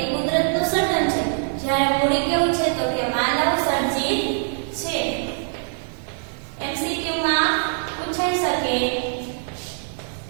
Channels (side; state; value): left; silent; digital silence